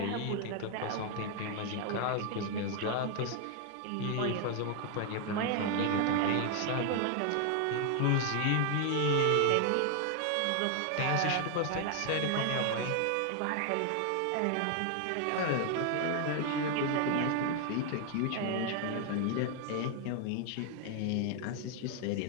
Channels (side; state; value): both; different; correlation 0.00